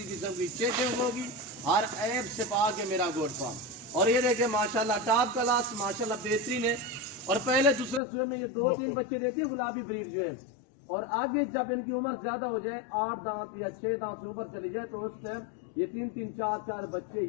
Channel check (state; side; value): drops out; right; at 8.0 s